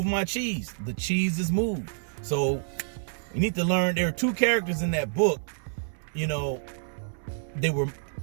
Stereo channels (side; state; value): left; silent; 59 dB below the other